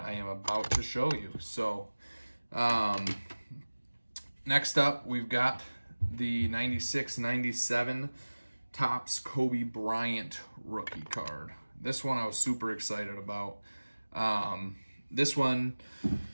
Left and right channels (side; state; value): both; inverted; correlation -1.00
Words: am about to show you. So next up, we've got the 96-97 Topps Kobe Bryant rookie card. This one I was super excited about. This one